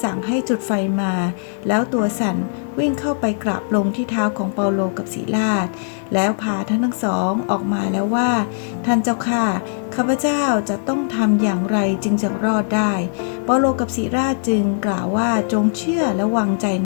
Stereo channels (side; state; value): right; silent; 66 dB below the other